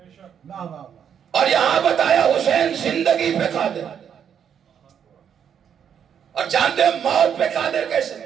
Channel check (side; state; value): left; quieter; 8.3 dB